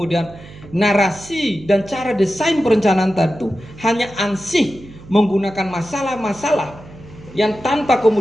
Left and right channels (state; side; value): noise; right; hum, 19 dB below the sound